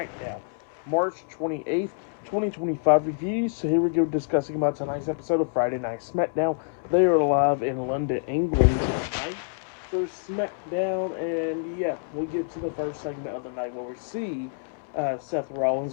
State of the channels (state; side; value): silent; right; 60 dB below the other